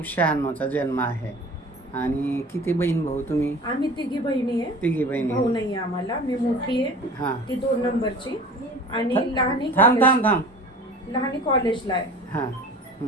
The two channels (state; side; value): normal; both; correlation 0.41